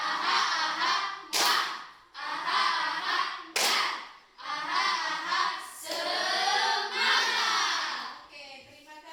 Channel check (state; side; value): identical; both; correlation 1.00